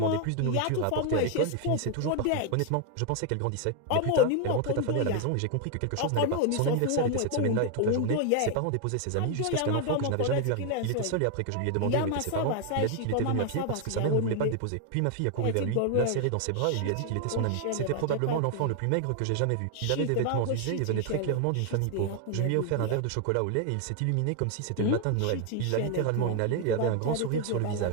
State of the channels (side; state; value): both; different; correlation 0.00